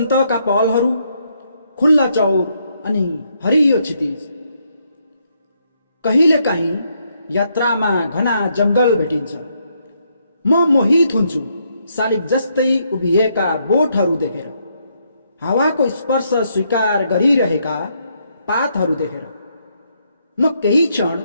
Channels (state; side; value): inverted; both; correlation -0.75